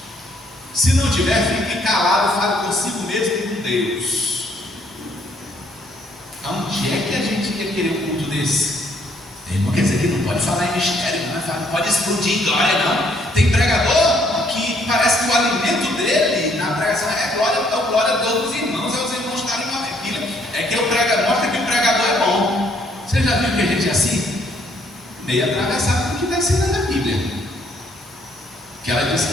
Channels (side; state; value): both; normal; correlation 0.67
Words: Se não tiver, fique calado, fale consigo mesmo e com Deus. Onde é que a gente ia querer um culto desse? Não quer dizer que não pode falar em mistério, não pode explodir em glória, não. Tem pregador que parece que o alimento dele na pregação é glória a Deus dos irmãos, é os irmãos estarem uma pilha. É que o pregador mostra que o pregador é bom. Você já viu que a gente é assim? Meio atravessado do que está ensinando na Bíblia. Que ela diz